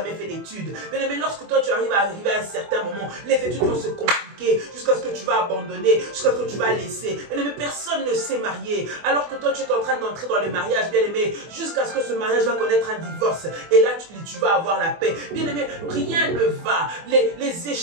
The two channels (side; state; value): left; late; 24 ms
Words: fait d'études. Bien-aimé, lorsque toi tu arrives à un certain certains moments, les études vont se compliquer jusqu'à ce que tu vas abandonner, jusqu'à ce que tu vas laisser. Bien-aimé, personne ne s'est marié, alors que toi tu es en train d'entrer dans le mariage, bien-aimé, jusqu'à ce que ce mariage va connaître un divorce. Et là, tu vas avoir la paix. Bien-aimé, rien ne va. Les